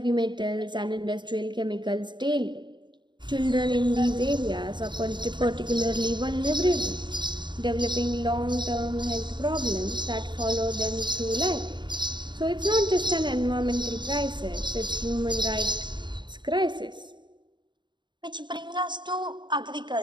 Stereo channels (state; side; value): late; left; 0.22 ms